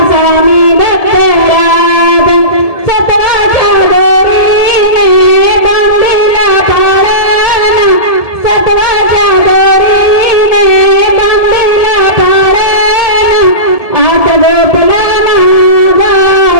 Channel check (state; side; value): late; right; 1.7 ms